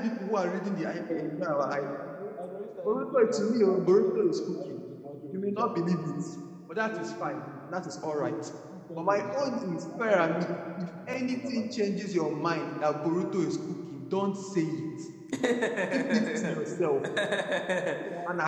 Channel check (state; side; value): identical; both; correlation 1.00